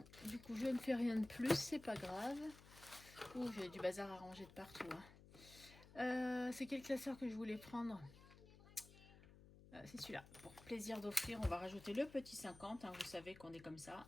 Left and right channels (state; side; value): noise; left; hum, 19 dB below the sound